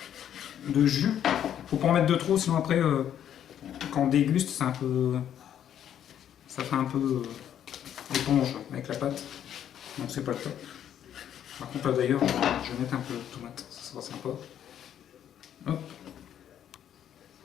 de jus. Faut pas en mettre de trop, sinon après quand on déguste, c'est un peu, ça fait un peu éponge avec la pâte. Donc c'est pas le top. Par contre là d'ailleurs, je vais mettre un peu de tomate, ça sera sympa. Hop.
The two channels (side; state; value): right; quieter; 10.0 dB